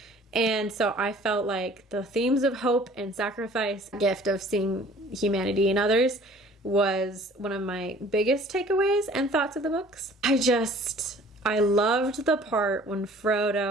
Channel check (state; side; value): normal; both; correlation 0.51